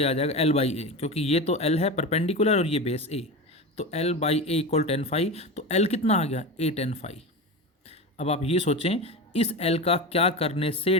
आ जाएगा एल बाई ए, क्योंकि ये तो एल है परपेंडिकुलर और ये बेस ए, तो L by A equal tan 5। तो एल कितना आ गया ए टेन 5। अब आप ये सोचें इस एल का क्या करने से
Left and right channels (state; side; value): normal; both; correlation 0.24